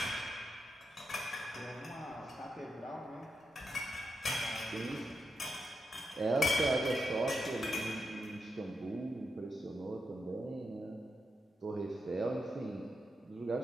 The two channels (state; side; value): normal; both; correlation 0.86